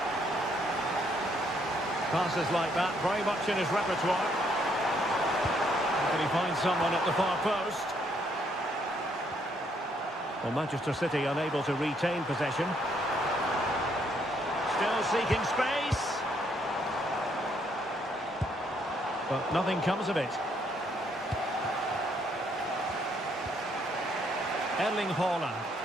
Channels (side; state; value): both; normal; correlation 0.70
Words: Passes like that, very much in his repertoire. Can he find someone at the far post? Well, Manchester City unable to retain possession. Still seeking space. But nothing comes of it. Erling Haaland.